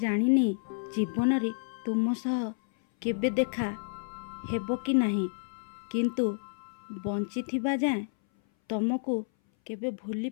जीवन रे तुम सह केबे देखा हेबो कि नाही किंतु बंची थिबा जाए तुमको केबे भूली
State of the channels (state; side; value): silent; right; 57 dB below the other